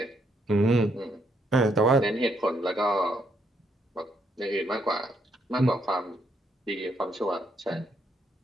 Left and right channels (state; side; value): normal; both; correlation 0.74